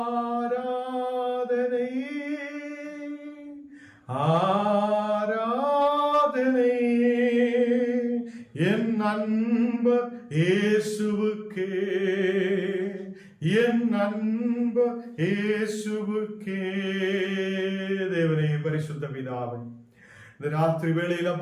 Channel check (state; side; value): identical; both; correlation 1.00